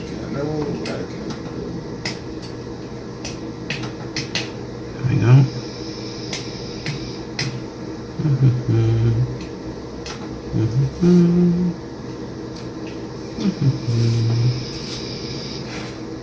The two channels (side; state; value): both; identical; correlation 1.00